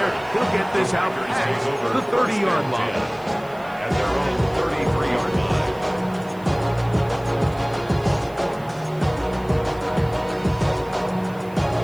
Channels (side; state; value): right; noise; hiss, 26 dB below the sound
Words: He'll get this out past the 30-yard line. At their own 33-yard line.